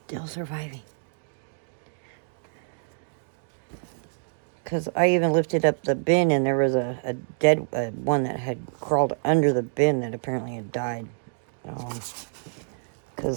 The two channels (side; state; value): left; silent; digital silence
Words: still surviving. Because I even lifted up the bin and there was a dead one that had crawled under the bin that apparently had died.